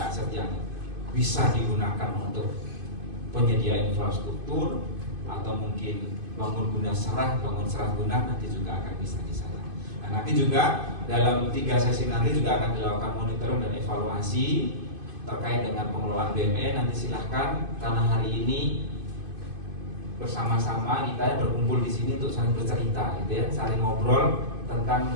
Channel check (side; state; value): left; late; 2.5 ms